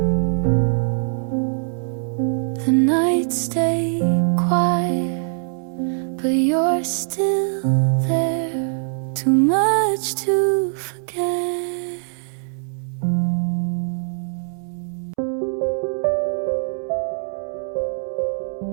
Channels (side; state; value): left; silent; 64 dB below the other